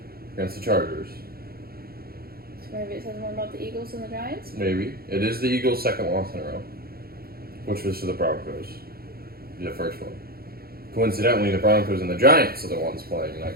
against the Chargers. So maybe it says more about the Eagles than the Giants? Maybe. It is the Eagles' second loss in a row, which was to the Broncos, the first one. Coincidentally, the Broncos and the Giants are the ones playing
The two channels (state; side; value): late; left; 0.44 ms